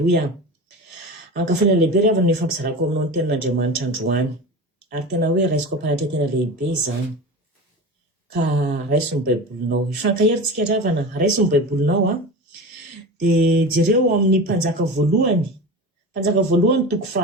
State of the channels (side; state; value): both; normal; correlation 0.29